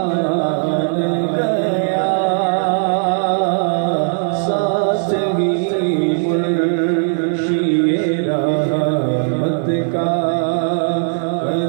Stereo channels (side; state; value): left; silent; digital silence